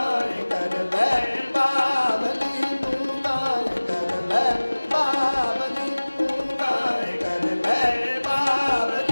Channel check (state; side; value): inverted; both; correlation -1.00